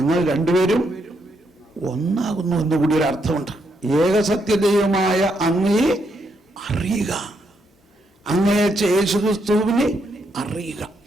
രണ്ടുപേരും ഒന്നാകുന്നു എന്ന് കൂടി ഒരു അർത്ഥമുണ്ട്. ഏകസത്യദൈവമായ അങ്ങയെ അറിയുക, അങ്ങയച്ച യേശുക്രിസ്തുവിനെ അറിയുക.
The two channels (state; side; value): normal; both; correlation 0.77